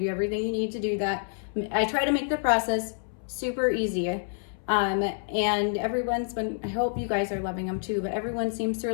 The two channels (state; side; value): silent; right; 59 dB below the other